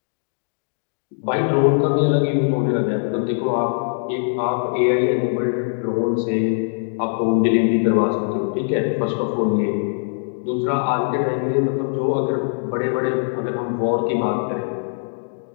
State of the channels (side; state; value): right; silent; digital silence